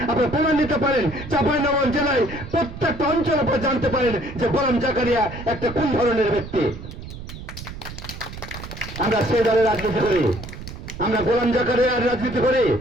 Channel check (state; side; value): noise; right; rumble, 11 dB below the sound